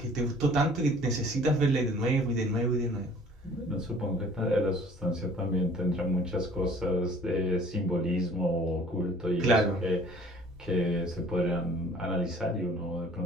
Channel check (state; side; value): normal; both; correlation 0.52